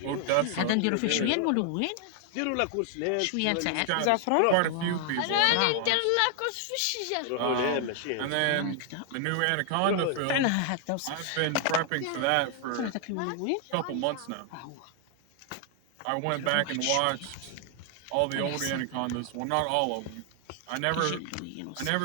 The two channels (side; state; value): both; different; correlation 0.00